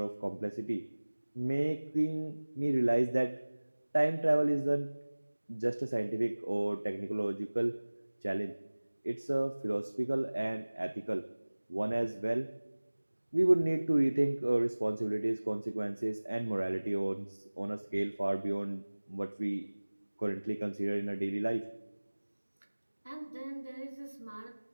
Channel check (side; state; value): both; inverted; correlation -1.00